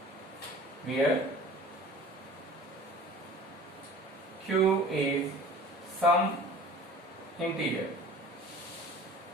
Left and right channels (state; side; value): normal; both; correlation 0.44